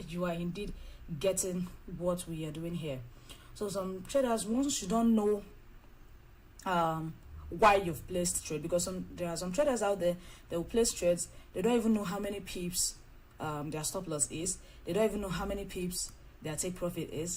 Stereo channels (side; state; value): both; identical; correlation 1.00